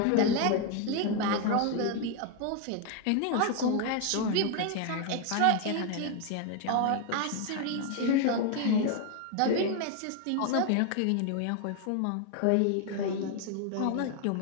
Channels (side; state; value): both; different; correlation 0.01